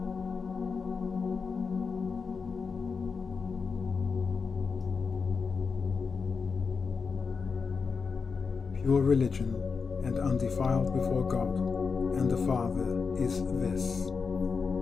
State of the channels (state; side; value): quieter; right; 5.2 dB